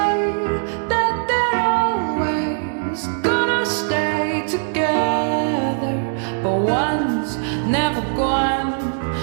that they're always gonna stay together, but one's never going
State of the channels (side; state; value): left; silent; 64 dB below the other